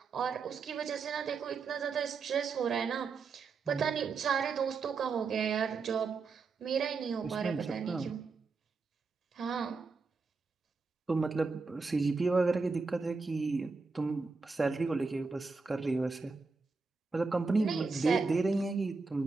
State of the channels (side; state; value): left; quieter; 4.4 dB